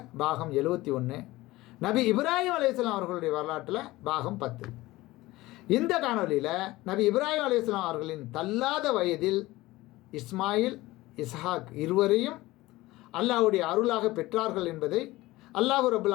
பாகம் 71, நபி இப்ராஹிம் அலைஹிஸ்ஸலாம் அவர்களுடைய வரலாற்றில் பாகம் 10. இந்த காணொலியில் நபி இப்ராஹிம் அலைஹிஸ்ஸலாம் அவர்களின் தள்ளாத வயதில் இஸ்மாயில், இஸ்ஹாக் இருவரையும் அல்லாஹ்வுடைய அருளாக பெற்றார்கள் என்பதை அல்லாஹ் ரப்பல்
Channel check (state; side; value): quieter; right; 18.7 dB